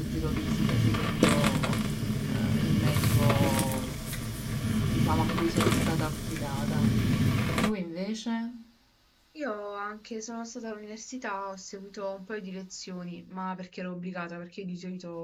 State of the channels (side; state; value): both; identical; correlation 1.00